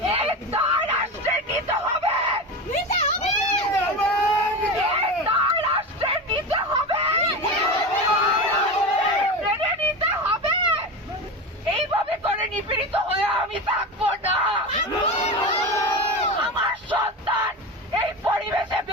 এই দায় রাষ্ট্রের নিতে হবে, এই দায় রাষ্ট্রের নিতে হবে, মেনে নিতে হবে। এইভাবে করে নিপীড়িত হয়ে আমি থাকবো না। আমার সন্তান এই পরিবেশে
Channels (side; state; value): both; normal; correlation 0.23